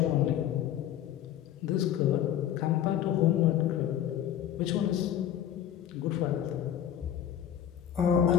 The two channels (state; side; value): quieter; right; 10.6 dB